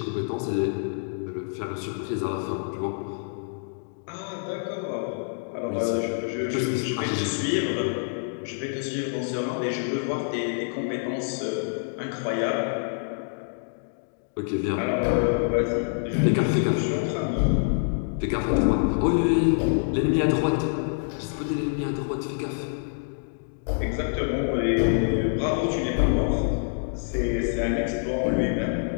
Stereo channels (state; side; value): silent; right; digital silence